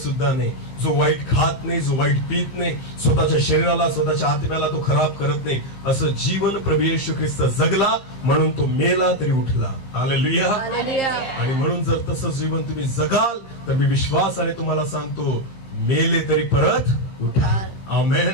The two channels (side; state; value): right; late; 15 ms